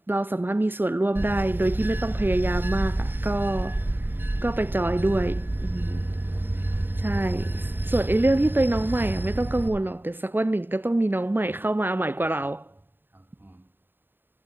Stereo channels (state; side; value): late; left; 0.096 ms